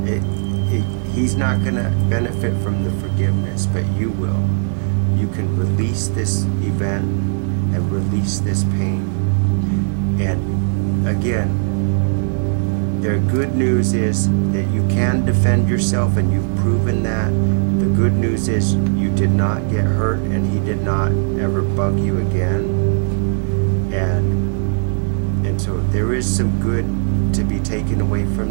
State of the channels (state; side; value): silent; left; digital silence